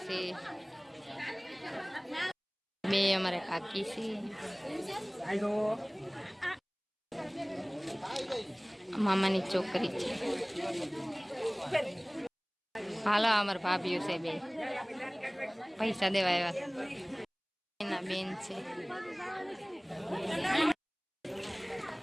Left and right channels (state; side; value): identical; both; correlation 1.00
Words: છે બે અમારા કાકી છે. મામાની છોકરી છે. હાલો અમારા ભાભીઓ છે બે પૈસા દેવા આવ્યા. એના બેન છે.